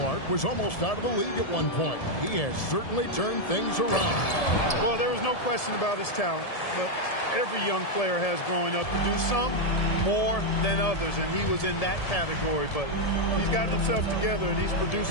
was almost out of the league at one point. He has certainly turned things around. Well, there was no question about his talent, but every young player has growing up to do some more than others, and he was in that category. But he's gotten himself together, and he's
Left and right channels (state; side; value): late; right; 1.7 ms